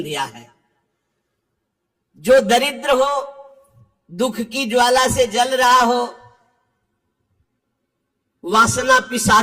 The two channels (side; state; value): both; identical; correlation 1.00